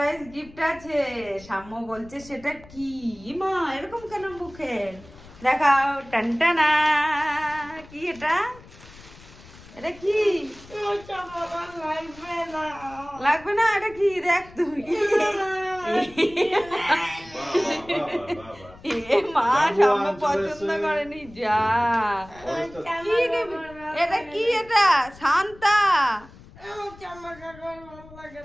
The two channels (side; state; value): left; noise; rumble, 21 dB below the sound